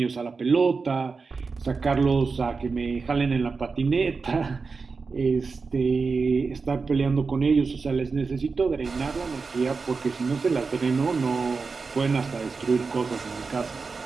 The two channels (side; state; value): left; quieter; 4.6 dB